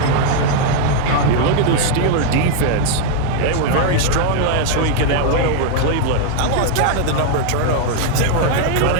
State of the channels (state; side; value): different; both; correlation 0.00